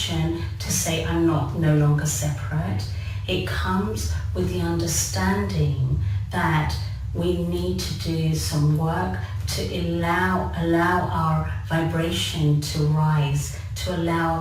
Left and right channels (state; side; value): identical; both; correlation 1.00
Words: to say, I'm no longer separate. It comes with the understanding that we need to do some work to allow our vibration to rise, to allow